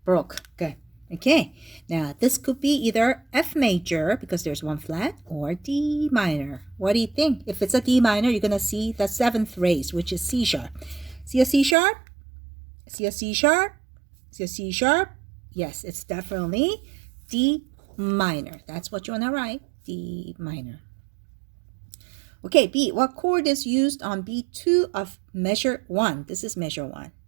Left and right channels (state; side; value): drops out; left; at 11.8 s